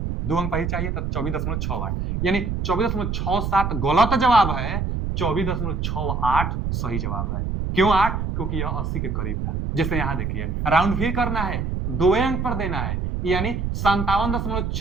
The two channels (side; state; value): right; noise; rumble, 2 dB below the sound